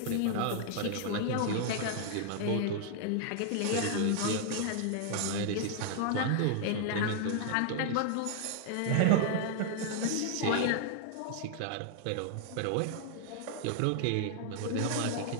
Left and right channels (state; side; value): different; both; correlation 0.00